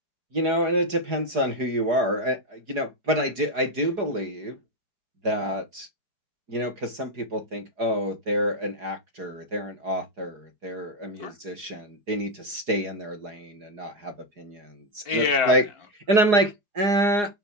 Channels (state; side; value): late; left; 4.8 ms